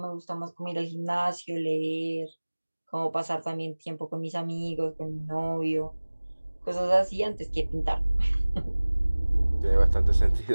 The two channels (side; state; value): both; inverted; correlation -1.00